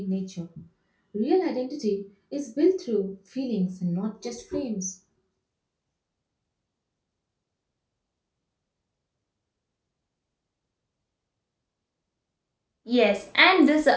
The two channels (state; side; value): identical; both; correlation 1.00